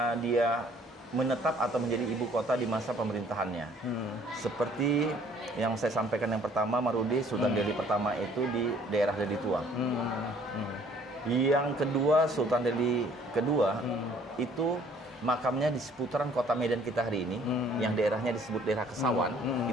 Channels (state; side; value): normal; both; correlation 0.58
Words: dia menetap atau menjadi ibu kota di masa pemerintahannya. Seperti yang saya sampaikan yang pertama, Marudi, Sultan Delhi pertama itu di daerah Deli Tua. Yang kedua, Sultan Delhi kedua itu makamnya di seputaran kota Medan kita hari ini, yang daerahnya disebut daerah Kesawan,